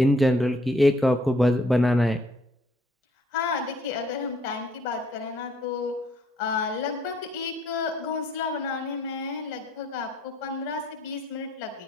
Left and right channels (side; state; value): both; normal; correlation 0.64